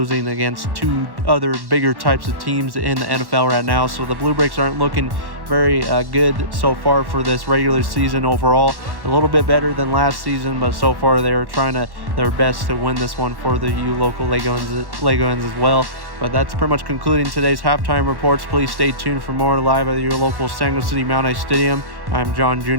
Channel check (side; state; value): left; late; 1.1 ms